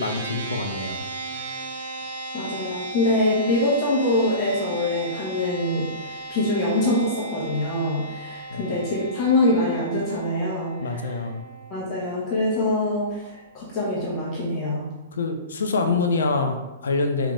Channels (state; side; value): inverted; both; correlation -0.34